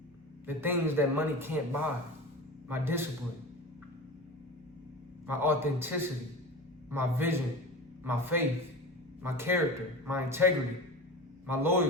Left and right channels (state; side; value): normal; both; correlation 0.31